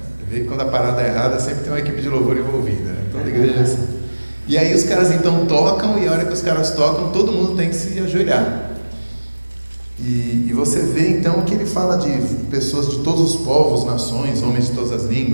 Você vê que quando a parada é errada sempre tem uma equipe de louvor envolvida, né? Toda igreja é assim. E aí os caras então tocam, e a hora que os caras tocam, todo mundo tem que se ajoelhar. E você vê então que ele fala de pessoas de todos os povos, nações, homens de todas as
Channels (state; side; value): inverted; both; correlation -1.00